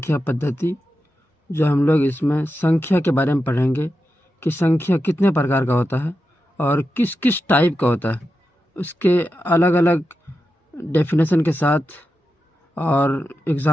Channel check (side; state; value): both; normal; correlation 0.89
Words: पद्धति। जो हम लोग इसमें संख्या के बारे में पढ़ेंगे कि संख्या कितने प्रकार का होता है और किस किस टाइप का होता है, उसके अलग अलग डेफिनेशन के साथ और